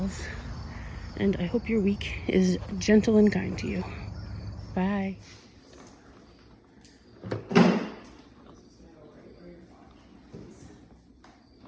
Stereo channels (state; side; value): identical; both; correlation 1.00